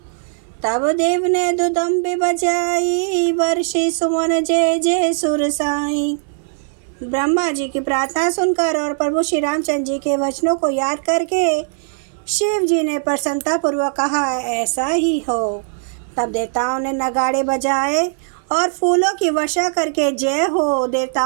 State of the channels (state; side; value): silent; left; 65 dB below the other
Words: तब देव ने दुदम्बे बजाई, वर्षी सुमन जय जय सुर साई। ब्रह्मा जी की प्रार्थना सुनकर और प्रभु श्री रामचंद्र जी के वचनों को याद करके शिव जी ने प्रसन्नतापूर्वक कहा, ऐसा ही हो। तब देवताओं ने नगाड़े बजाए और फूलों की वर्षा करके जय हो,